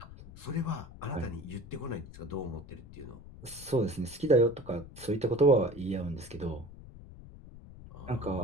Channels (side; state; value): left; noise; rumble, 16 dB below the sound